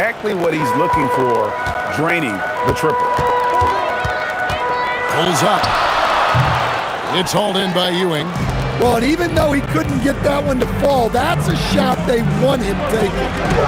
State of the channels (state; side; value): identical; both; correlation 1.00